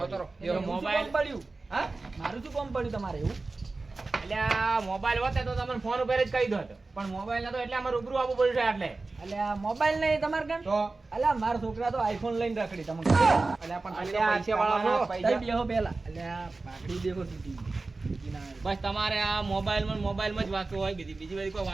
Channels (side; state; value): left; quieter; 3.5 dB